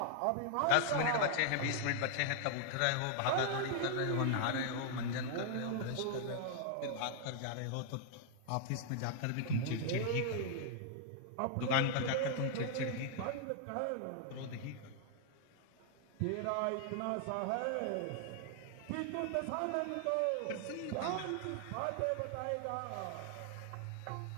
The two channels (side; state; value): both; different; correlation -0.01